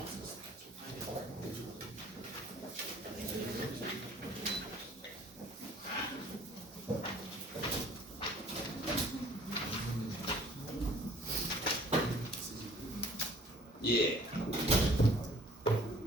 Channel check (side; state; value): both; normal; correlation 0.54